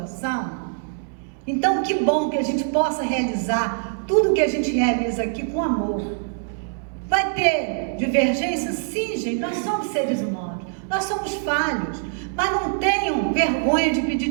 Então, que bom que a gente possa realizar tudo que a gente realiza aqui com amor. Vai ter divergência? Sim, gente, nós somos seres humanos, nós somos falhos, mas não tenham vergonha de pedir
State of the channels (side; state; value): left; silent; digital silence